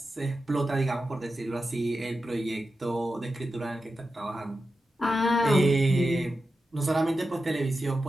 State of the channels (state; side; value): normal; both; correlation 0.91